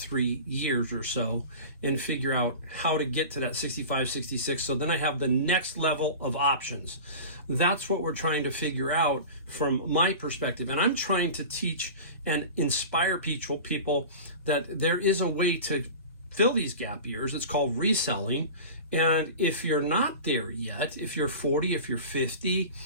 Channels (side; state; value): both; inverted; correlation -0.33